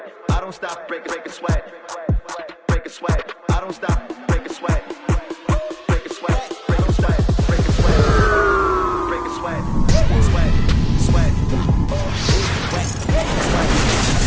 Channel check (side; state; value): both; identical; correlation 1.00